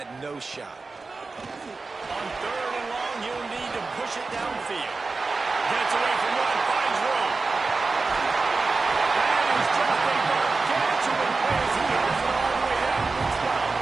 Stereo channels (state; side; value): quieter; left; 4.0 dB